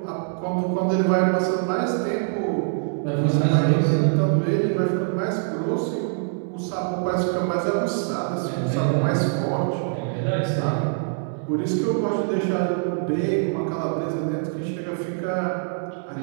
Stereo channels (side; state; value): left; silent; 63 dB below the other